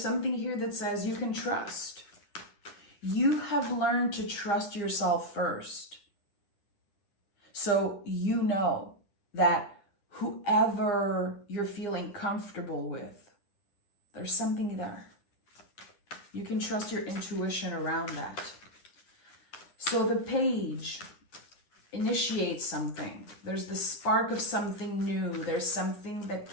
here that says you can trust. You have learned to trust yourself first. So you know that whoever you're feeling comfortable with, there's something there. You can trust your intuition around that. So the page initiates something. There's the spark of something new. There's something that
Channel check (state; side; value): late; right; 10 ms